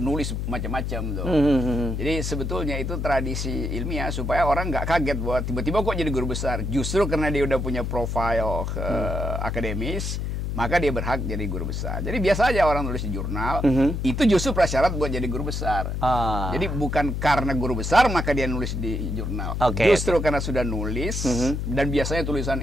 macam-macam tuh. Jadi sebetulnya itu tradisi ilmiah supaya orang nggak kaget bahwa tiba-tiba kok jadi guru besar. Justru karena dia udah punya profil akademis, maka dia berhak jadi guru besar. Jadi biasa aja orang nulis di jurnal, itu justru prasyarat buat jadi guru besar. Jadi bukan karena guru besar maka dia nulis di jurnal. Justru karena sudah nulis, dan biasanya tulisan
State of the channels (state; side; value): noise; left; hum, 2 dB below the sound